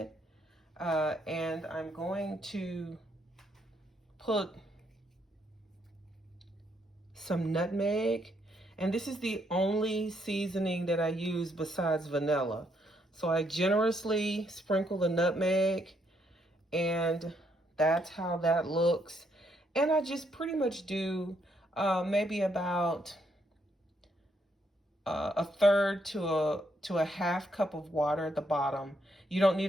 and I'm going to put some nutmeg, and this is the only seasoning that I use besides vanilla. So I generously sprinkle the nutmeg, and that's how that looks. And I just pretty much do maybe about a third to a half cup of water at the bottom. You don't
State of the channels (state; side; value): normal; both; correlation 0.74